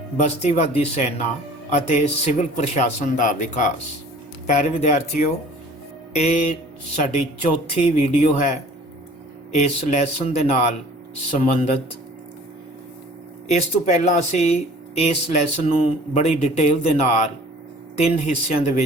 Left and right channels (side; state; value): both; normal; correlation 0.49